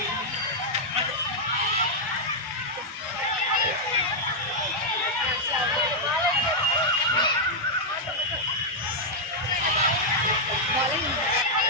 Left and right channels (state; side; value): normal; both; correlation -0.04